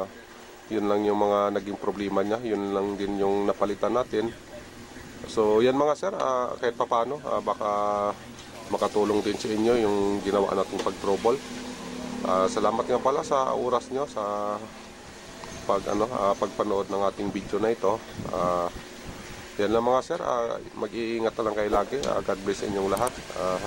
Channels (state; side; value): identical; both; correlation 1.00